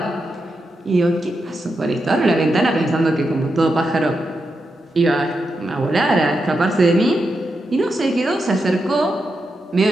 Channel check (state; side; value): normal; both; correlation 0.86